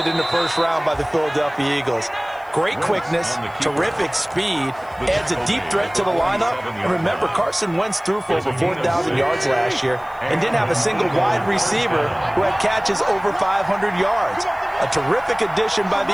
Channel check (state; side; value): noise; left; hiss, 30 dB below the sound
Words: in the 1st round by the Philadelphia Eagles. Great quickness, terrific speed, adds a deep threat to the lineup. And remember, Carson Wentz threw for over 4,000 yards last year and didn't have a single wide receiver who had catches over 500 yards. A terrific addition by the